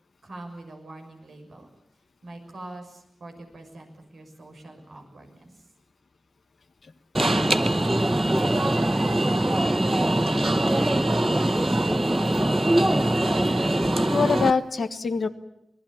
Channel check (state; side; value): normal; both; correlation 0.94